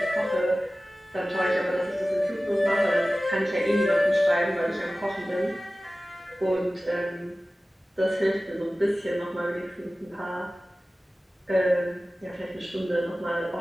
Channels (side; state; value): both; normal; correlation 0.96